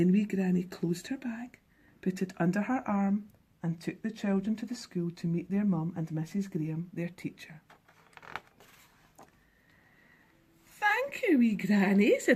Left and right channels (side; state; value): both; identical; correlation 1.00